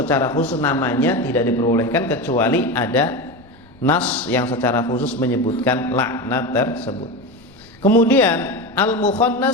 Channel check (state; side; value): noise; left; rumble, 27 dB below the sound